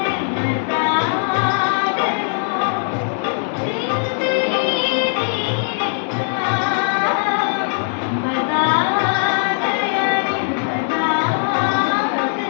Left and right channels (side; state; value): right; silent; 58 dB below the other